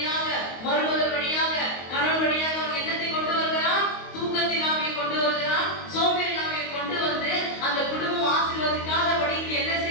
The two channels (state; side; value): late; right; 22 ms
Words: மருமகள் வழியாக, கணவன் வழியாக அவங்க என்னத்தை கொண்டு வருகிறான், தூக்கத்தின் ஆவியை கொண்டு வருகிறான், சோம்பேறி ஆவியை கொண்டு வந்து அந்த குடும்பம் ஆசீர்வதிக்காதபடிக்கு என்ன